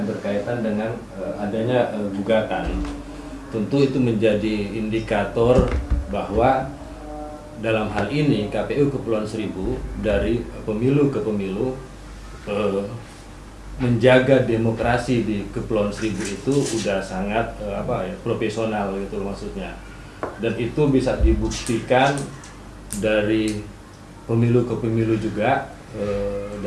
berkaitan dengan adanya gugatan. Tentu itu menjadi indikator bahwa dalam hal ini KPU Kepulauan Seribu dari pemilu ke pemilu menjaga demokrasi di Kepulauan Seribu itu udah sangat profesional gitu maksudnya, dan itu bisa dibuktikan dari pemilu ke pemilu juga.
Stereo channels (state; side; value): identical; both; correlation 1.00